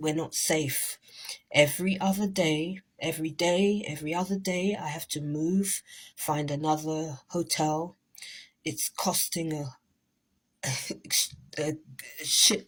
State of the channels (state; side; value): identical; both; correlation 1.00